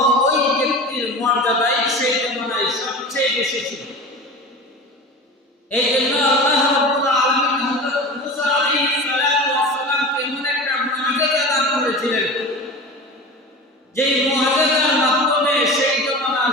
ওই ব্যক্তির মর্যাদাই সেই জমানায় সবচেয়ে বেশি ছিল। এই জন্য আল্লাহ রাব্বুল আলামিন হযরত মুসা আলাইহিস সালামকে এমন একটা মুআজিজা দান করেছিলেন, যেই মুআজিজার মাধ্যমে সেই জমানার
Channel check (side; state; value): both; normal; correlation 0.33